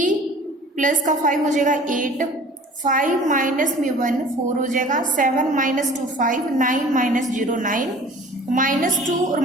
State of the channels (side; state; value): both; normal; correlation 0.46